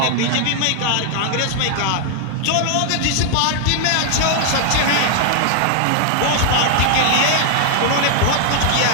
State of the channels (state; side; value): different; both; correlation 0.00